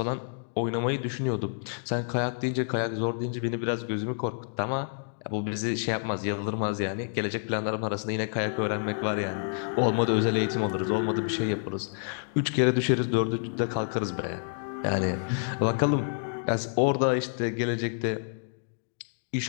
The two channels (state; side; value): silent; right; digital silence